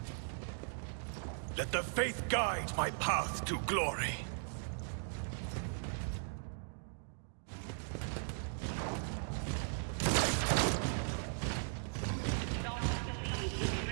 Let the faith guide my path to glory. Not believe the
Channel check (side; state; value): left; silent; digital silence